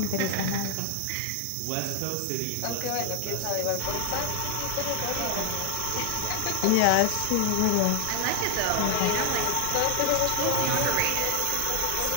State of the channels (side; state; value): both; different; correlation 0.00